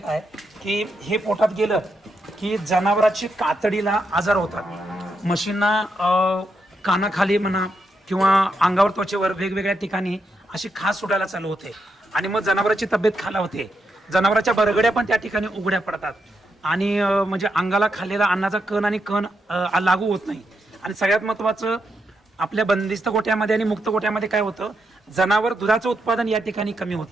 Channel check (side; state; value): both; normal; correlation 0.82